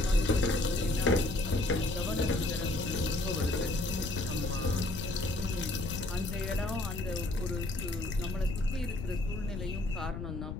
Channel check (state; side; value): noise; left; rumble, 6 dB below the sound